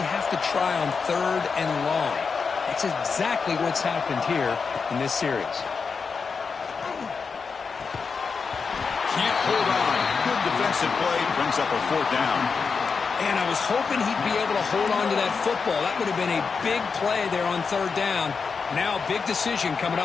have to try on 3rd and long. That's exactly what's happened here in this series. Can't hold on. Good defensive play. Brings up a 4th down. And I was hoping he'd be able to hold on to that football. That would have been a big play there on 3rd down. Now a big decision coming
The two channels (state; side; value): quieter; right; 5.3 dB